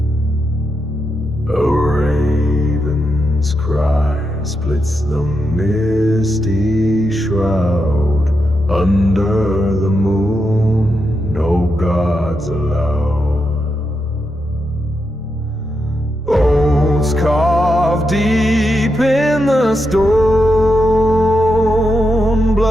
A raven's cry splits the misty shroud. Under the moon no gods allowed. Oaths carved deep in the stone,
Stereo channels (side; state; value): both; normal; correlation 0.85